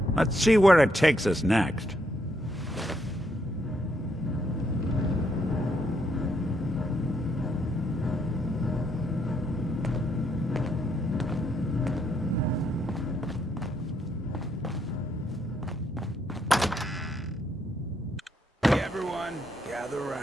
Let's see where it takes us next.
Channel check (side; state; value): both; normal; correlation 0.75